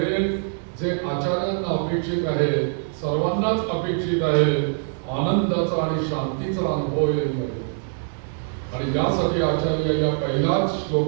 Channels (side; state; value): left; silent; digital silence